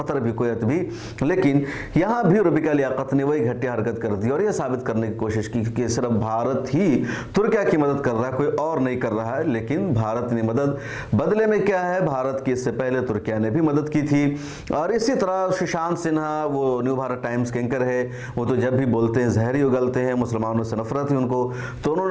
भी, कुवैत भी। लेकिन यहाँ भी रुबिका लियाकत ने वही घटिया हरकत कर दी और यह साबित करने की कोशिश की कि सिर्फ भारत ही तुर्किया की मदद कर रहा है, कोई और नहीं कर रहा है। लेकिन भारत ने मदद बदले में क्या है, भारत की इससे पहले तुर्किया ने भी मदद की थी। और इसी तरह सुशांत सिन्हा, वो न्यू भारत टाइम्स के एंकर है, वो तो जब भी बोलते हैं जहरी उगलते हैं, मुसलमानों से नफरत है उनको। तो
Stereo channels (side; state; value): both; identical; correlation 1.00